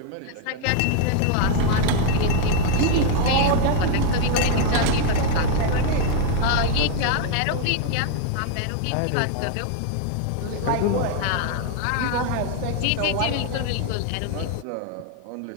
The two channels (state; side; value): different; both; correlation 0.00